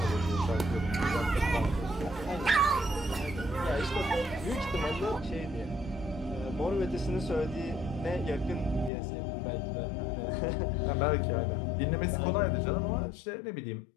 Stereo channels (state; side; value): drops out; right; at 8.9 s